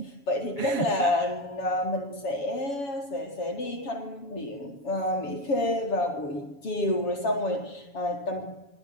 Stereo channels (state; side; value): late; right; 7.1 ms